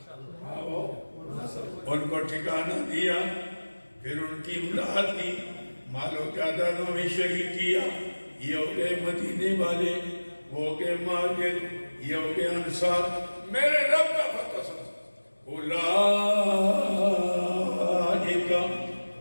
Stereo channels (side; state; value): both; inverted; correlation -1.00